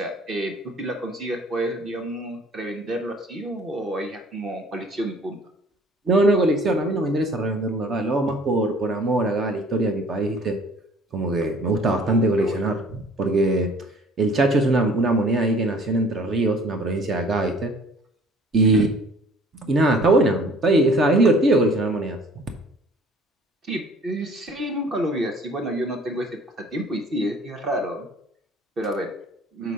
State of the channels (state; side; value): normal; both; correlation 0.52